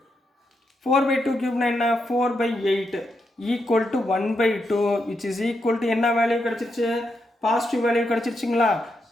4/2³ என்ன? 4/8 equal to 1/2 which is equal to என்ன வேல்யூ கிடச்சிருச்சு? பாசிட்டிவ் வேல்யூ கிடச்சிருச்சுங்களா?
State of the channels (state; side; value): normal; both; correlation 0.83